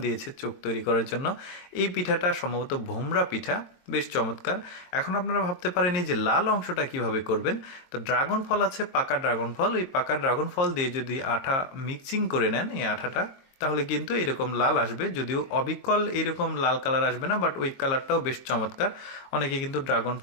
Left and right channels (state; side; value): late; right; 22 ms